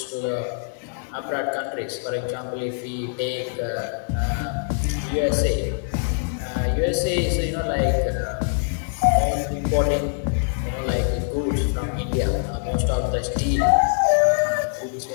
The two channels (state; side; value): silent; right; 63 dB below the other